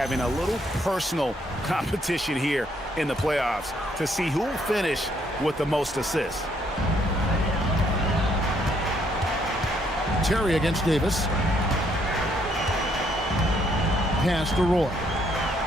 a little personal competition here in the playoffs to see who will finish with the most assists. Terry against Davis. Pass to Roy.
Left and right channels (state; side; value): normal; both; correlation 0.70